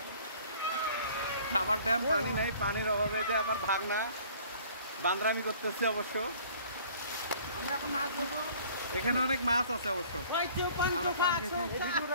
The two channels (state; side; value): inverted; both; correlation -0.52